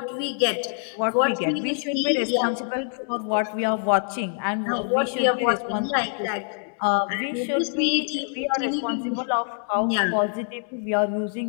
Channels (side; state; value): right; silent; 55 dB below the other